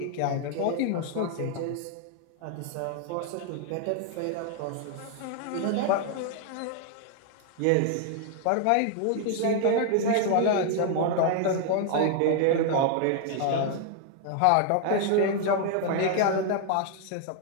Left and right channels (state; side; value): different; both; correlation 0.00